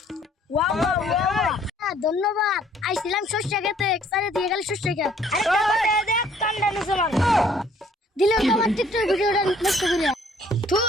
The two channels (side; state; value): both; normal; correlation 0.60